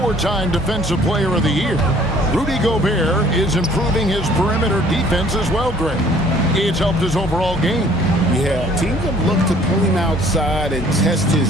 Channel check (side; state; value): both; normal; correlation 0.56